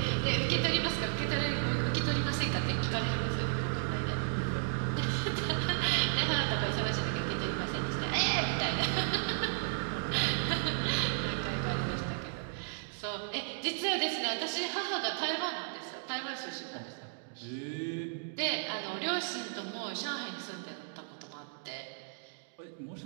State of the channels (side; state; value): left; silent; digital silence